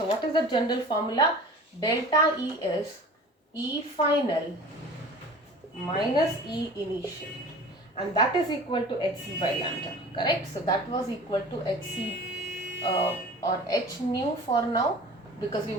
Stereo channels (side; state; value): both; normal; correlation 0.41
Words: what is the general formula? Delta E is E final minus E initial, and that is equal to Hc by lambda, correct? So that was equal to Hc or H nu for now, because we